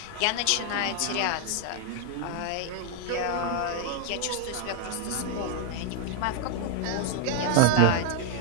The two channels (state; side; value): different; both; correlation 0.00